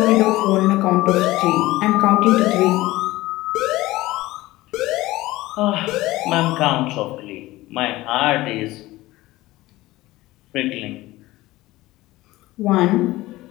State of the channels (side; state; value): right; quieter; 18.2 dB